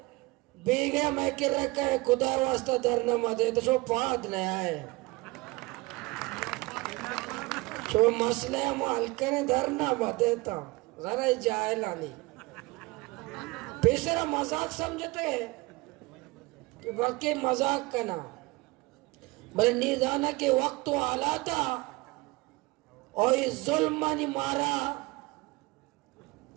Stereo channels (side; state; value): left; quieter; 23.2 dB